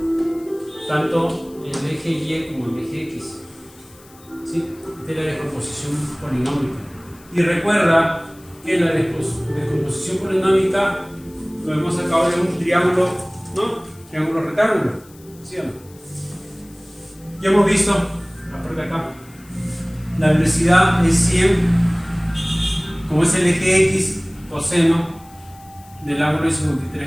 Tanto el eje Y como el eje X, ¿sí? Esta es la descomposición polinómica. Y recuerda que la descomposición polinómica lo hemos sacado de un triángulo, ¿no? Triángulo rectángulo, ¿sí o no? Ya hemos visto, aparte acá, la velocidad es 100, como es el eje X, coseno del ángulo de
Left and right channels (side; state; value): left; noise; hiss, 25 dB below the sound